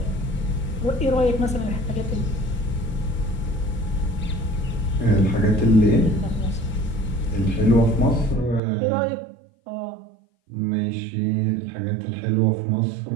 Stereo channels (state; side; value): drops out; left; at 8.6 s